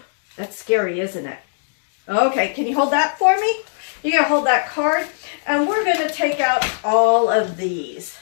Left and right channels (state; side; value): silent; right; digital silence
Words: That's scary, isn't it? Okay, can you hold that for me? You're going to hold that card, and we're going to take out all of these.